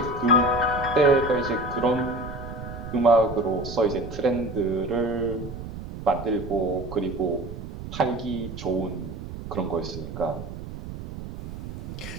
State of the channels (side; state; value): right; noise; rumble, 10 dB below the sound